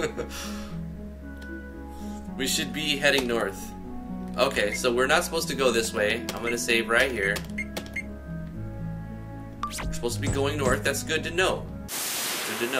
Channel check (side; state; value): both; identical; correlation 1.00